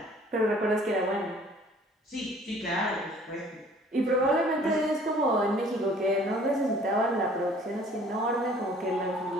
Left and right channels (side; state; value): both; normal; correlation 0.54